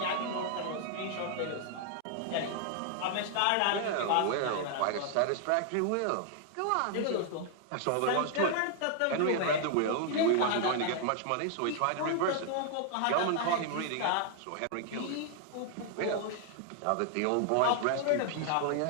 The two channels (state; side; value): different; both; correlation 0.00